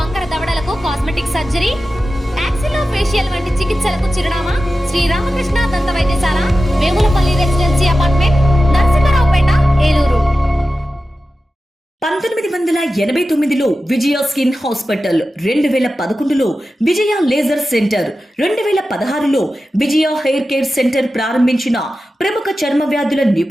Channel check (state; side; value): normal; both; correlation 0.93